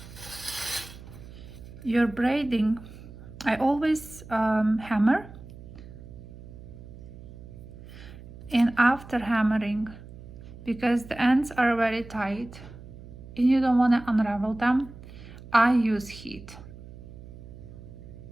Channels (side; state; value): right; noise; hum, 16 dB below the sound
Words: your braiding, I always hammer, and after hammering, because the ends are very tight and you don't want to unravel them, I use heat.